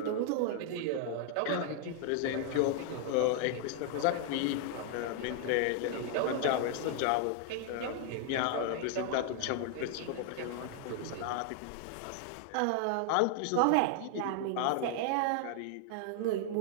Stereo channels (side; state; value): both; different; correlation 0.00